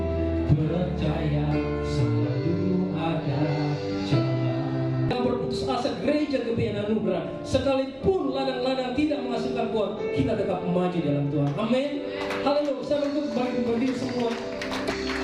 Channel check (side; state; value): both; identical; correlation 1.00